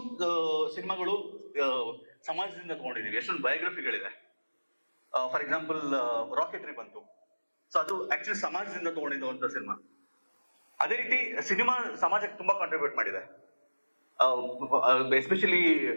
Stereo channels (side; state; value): both; inverted; correlation -1.00